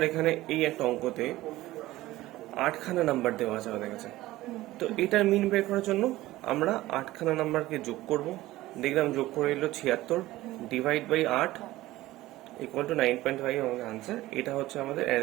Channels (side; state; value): left; quieter; 17.0 dB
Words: এখানে এই একটা অঙ্কতে 8খানা নাম্বার দেওয়া আছে আমাদের কাছে, তো এটার মিন বের করার জন্য আমরা 8খানা নাম্বারকে যোগ করব। দেখলাম যোগ করে এলো 76, ডিভাইড বাই 8 ইকুয়াল টু 9.5 আমাদের আনসার। এটা হচ্ছে আমাদের